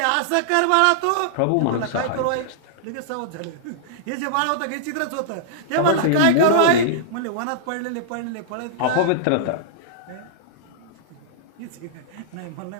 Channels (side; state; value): both; different; correlation -0.01